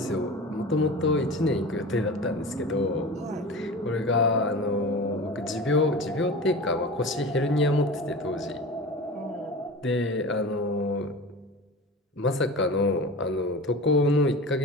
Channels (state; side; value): normal; both; correlation 0.32